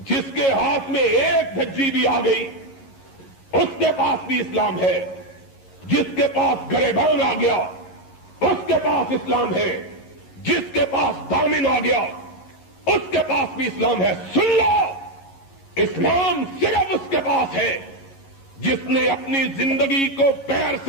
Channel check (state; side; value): late; right; 11 ms